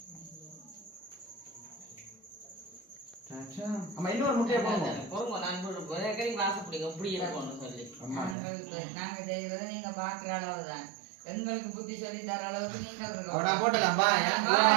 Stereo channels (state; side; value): drops out; left; at 8.3 s